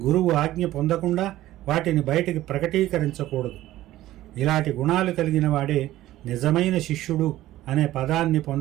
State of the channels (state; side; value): quieter; left; 15.1 dB